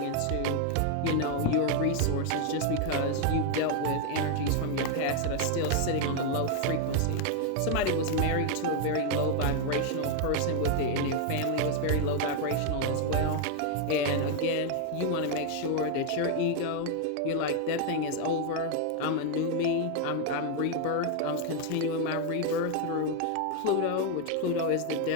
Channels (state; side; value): different; both; correlation 0.01